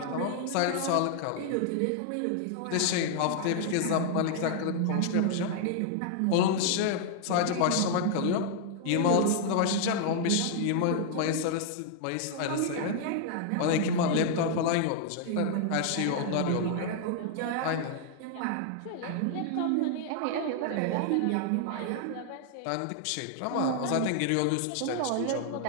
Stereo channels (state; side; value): different; both; correlation 0.00